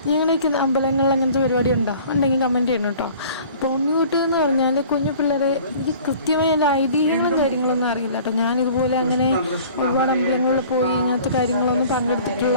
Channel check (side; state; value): both; inverted; correlation -0.48